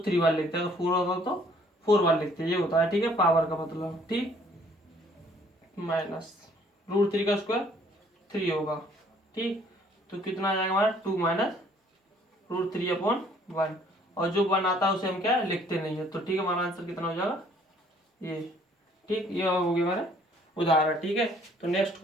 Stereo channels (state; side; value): normal; both; correlation 0.60